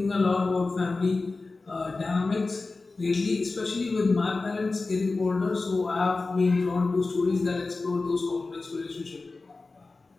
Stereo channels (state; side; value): quieter; right; 3.6 dB